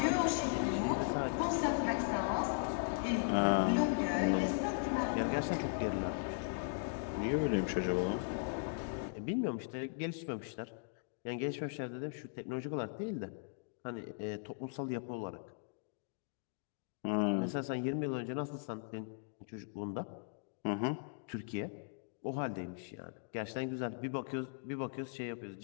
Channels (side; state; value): right; silent; digital silence